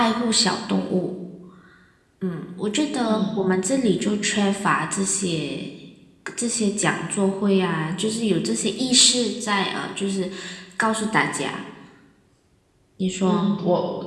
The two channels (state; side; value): identical; both; correlation 1.00